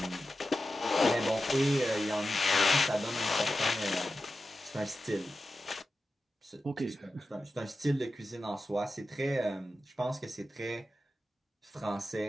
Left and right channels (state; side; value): normal; both; correlation 0.92